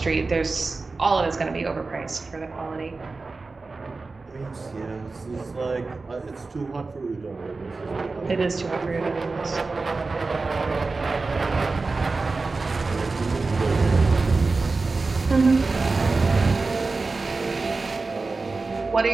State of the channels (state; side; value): quieter; left; 3.8 dB